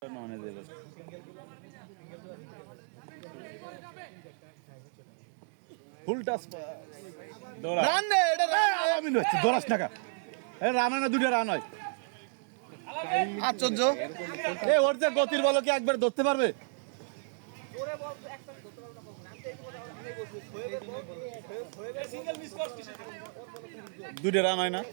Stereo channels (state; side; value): silent; left; 56 dB below the other